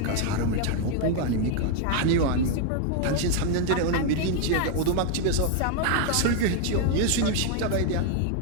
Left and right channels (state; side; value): different; both; correlation 0.00